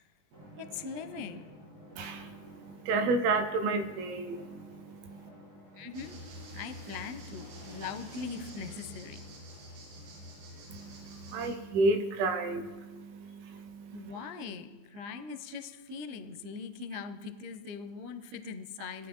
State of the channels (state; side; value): late; left; 21 ms